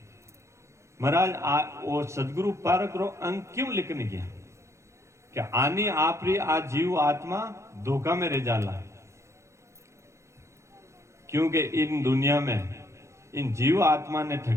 महाराज वो सदगुरु पारक रो अंग क्यों लिखने गया क्या आनी आपरी आ जीव आत्मा धोखा में रह जाला क्योंकि इन दुनिया में इन जीव आत्मा ने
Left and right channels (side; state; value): left; late; 0.14 ms